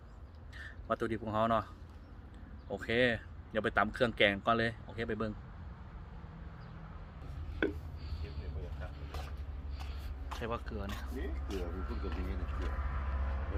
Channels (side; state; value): both; identical; correlation 1.00